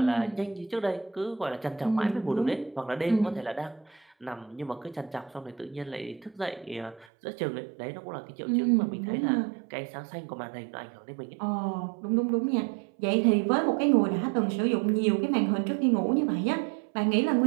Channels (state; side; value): drops out; left; at 7.1 s